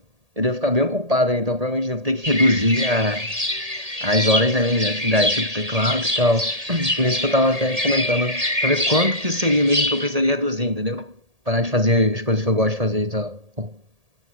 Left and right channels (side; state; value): left; late; 1.8 ms